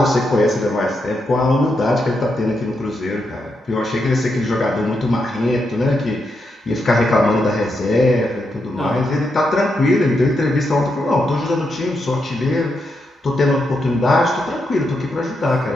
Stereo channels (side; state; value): both; normal; correlation 0.83